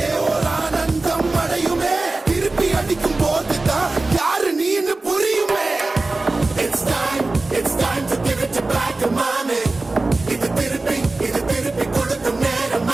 ஒரு ஆனந்தம் அடையுமே திருப்பி அடிக்கும் போதுதான் யாரு நீன்னு புரியுமே It's time to give it back to mommy இது திருப்பி கொடுக்கும் நேரம்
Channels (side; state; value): left; quieter; 3.2 dB